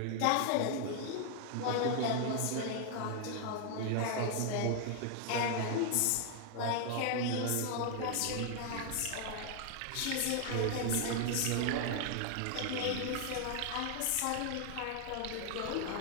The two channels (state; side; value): different; both; correlation 0.00